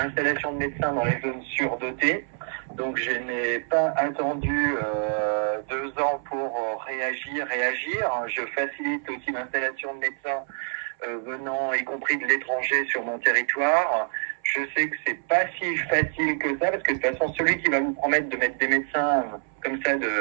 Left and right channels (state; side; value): silent; left; 61 dB below the other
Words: de médecins dans les zones surdotées. Donc je n'ai pas attendu 2 ans pour réagir. Je facilite aussi l'installation de médecins venant, y compris de l'étranger, sur mon territoire. Je sais que c'est pas si facile que ça, parce que de toute façon, celui qui va vous promettre de mettre des médecins comme ça